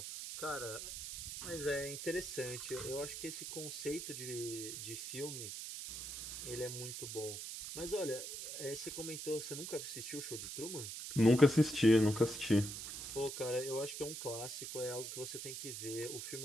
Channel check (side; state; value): right; noise; hiss, 7 dB below the sound